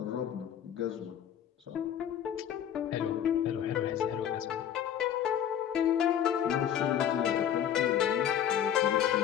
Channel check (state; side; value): quieter; right; 9.7 dB